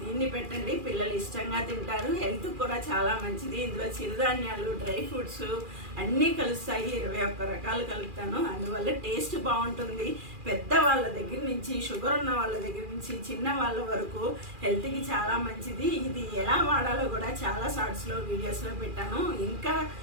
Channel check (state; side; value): late; left; 2.4 ms